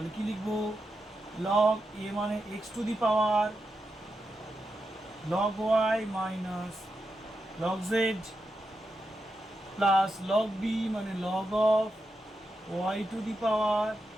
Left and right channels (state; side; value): normal; both; correlation 0.87